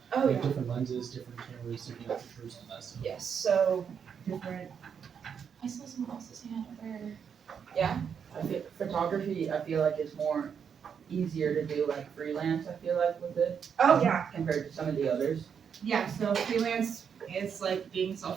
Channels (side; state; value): left; quieter; 7.2 dB